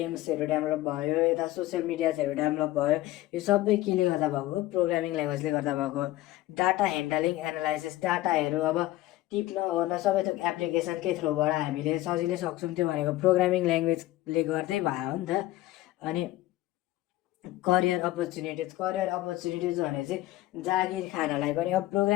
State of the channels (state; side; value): quieter; right; 16.4 dB